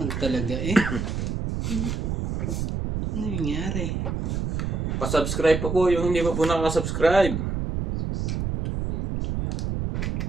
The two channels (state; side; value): noise; right; rumble, 2 dB below the sound